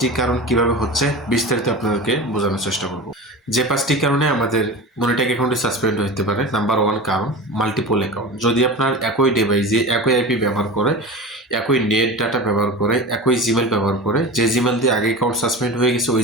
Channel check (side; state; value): both; normal; correlation 0.30